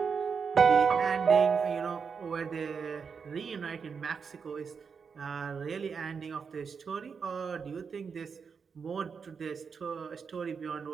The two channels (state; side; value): quieter; left; 5.9 dB